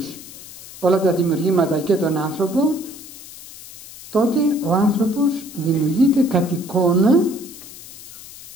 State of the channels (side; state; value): left; noise; hiss, 16 dB below the sound